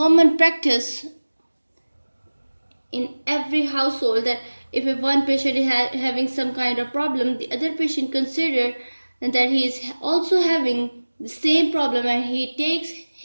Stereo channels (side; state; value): both; inverted; correlation -1.00